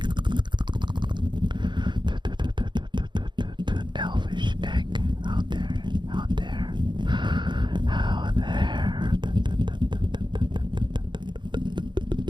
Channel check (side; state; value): left; late; 0.22 ms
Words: Elvish egg. Out there. Out there. Out there.